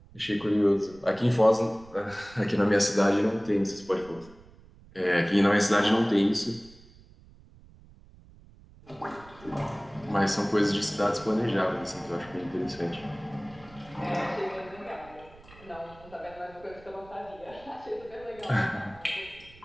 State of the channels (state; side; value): noise; right; rumble, 23 dB below the sound